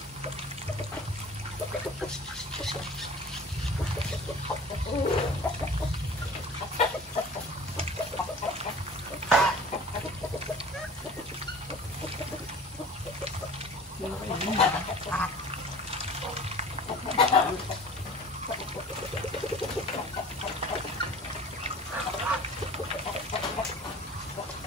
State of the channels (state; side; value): normal; both; correlation 0.43